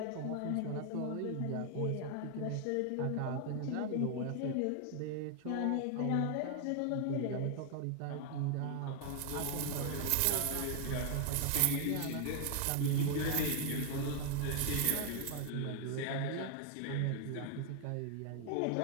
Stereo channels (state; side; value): different; both; correlation 0.00